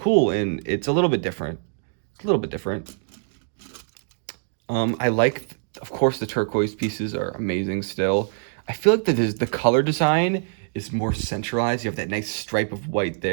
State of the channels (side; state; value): left; silent; digital silence